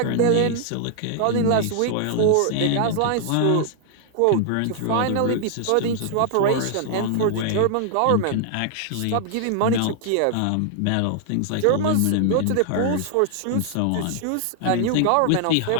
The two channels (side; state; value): both; different; correlation 0.00